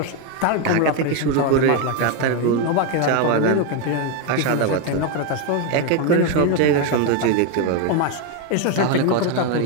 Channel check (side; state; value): both; different; correlation 0.02